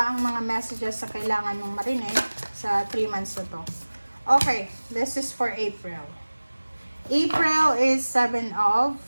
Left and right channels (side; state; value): both; inverted; correlation -1.00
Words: ang mga messages na kailangan mong marinig sa 3 months na to. Okay, this is for April. April is 7 of